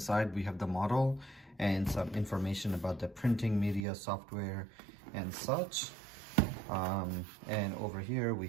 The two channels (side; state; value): left; drops out; at 3.9 s